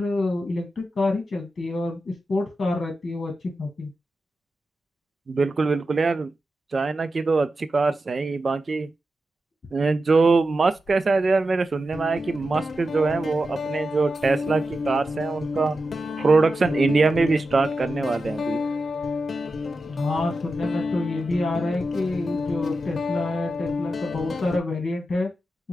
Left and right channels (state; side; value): normal; both; correlation 0.90